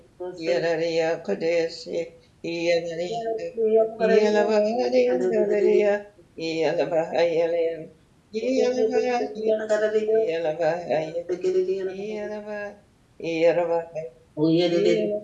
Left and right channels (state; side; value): identical; both; correlation 1.00